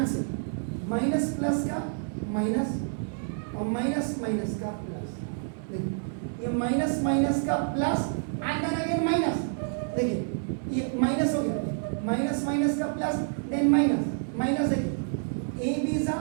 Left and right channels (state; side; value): silent; left; digital silence